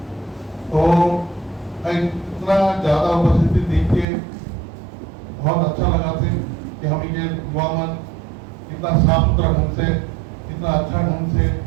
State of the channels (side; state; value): left; drops out; at 4.0 s